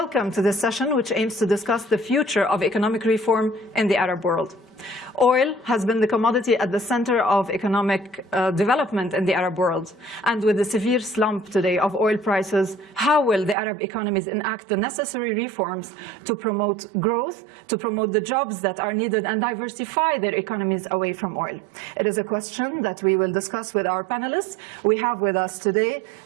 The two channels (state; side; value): drops out; left; at 13.6 s